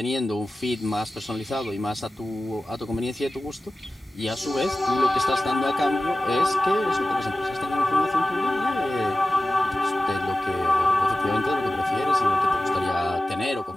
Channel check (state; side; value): normal; both; correlation 0.96